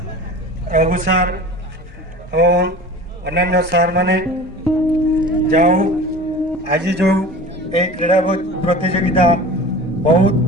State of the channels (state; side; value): normal; both; correlation 0.38